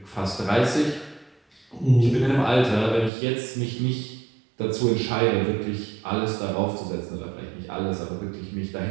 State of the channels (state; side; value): drops out; left; at 3.1 s